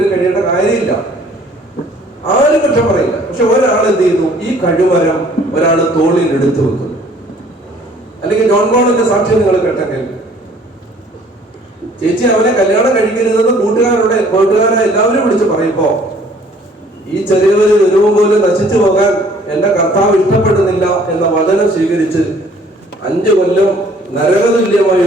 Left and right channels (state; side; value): normal; both; correlation 0.57